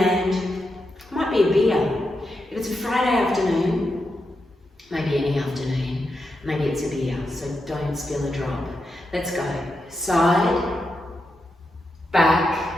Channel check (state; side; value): normal; both; correlation 0.86